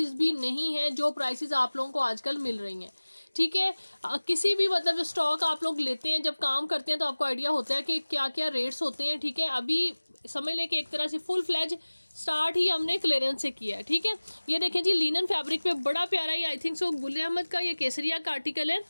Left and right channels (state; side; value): inverted; both; correlation -1.00